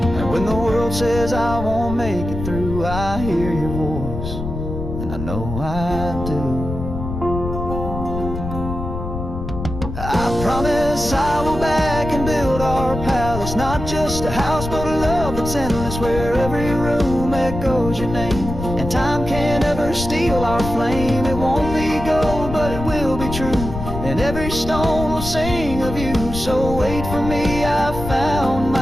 Says I won't make it through, I hear your voice, and I know I do. I promise I will back and build our palace, not just a house but a love that's endless, where every room echoes your name, and time can't ever steal our flame. It won't be gold, but it will be true, and every stone will sing of you. So wait for me, I've found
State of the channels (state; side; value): noise; left; rumble, 6 dB below the sound